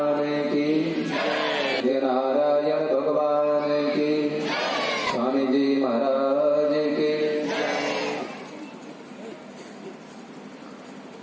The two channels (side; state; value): both; identical; correlation 1.00